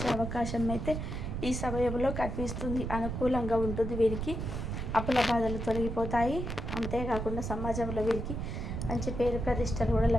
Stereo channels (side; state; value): right; noise; rumble, 4 dB below the sound